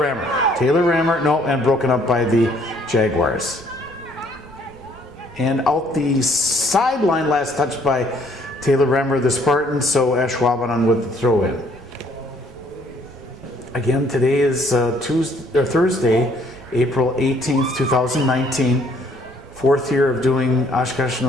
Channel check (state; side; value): noise; right; rumble, 23 dB below the sound